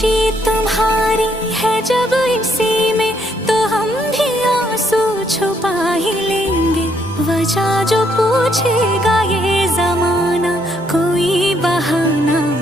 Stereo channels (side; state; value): both; normal; correlation 0.72